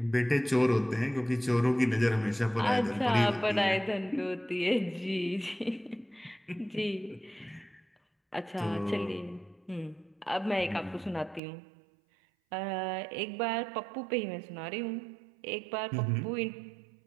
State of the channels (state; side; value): drops out; left; at 11.4 s